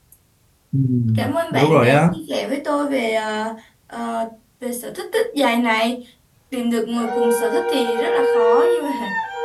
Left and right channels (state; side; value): identical; both; correlation 1.00